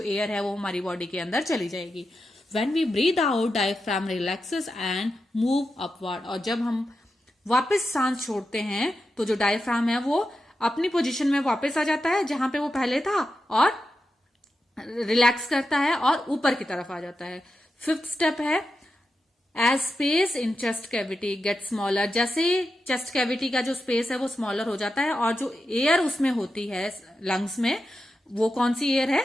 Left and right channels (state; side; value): normal; both; correlation 0.89